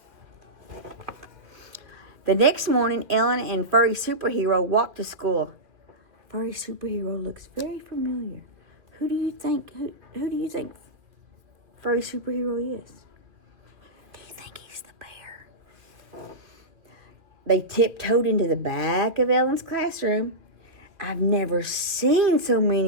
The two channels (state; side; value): late; left; 2.2 ms